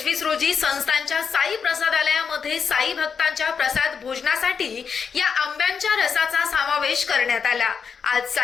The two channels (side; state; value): right; quieter; 6.2 dB